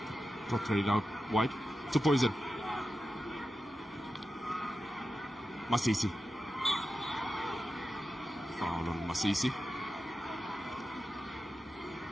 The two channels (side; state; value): both; normal; correlation 0.92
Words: Played out wide to Poison. Masisi. Foul on Masisi.